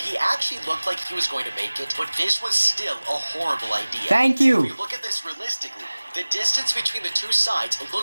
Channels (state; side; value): inverted; both; correlation -1.00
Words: he actually looked like he was going to make it, but this was still a horrible idea. Thank you. If you look at this realistically, The distance between the two sides